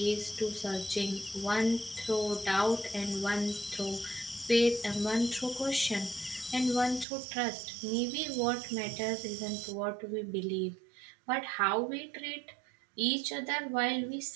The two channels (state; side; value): drops out; left; at 7.1 s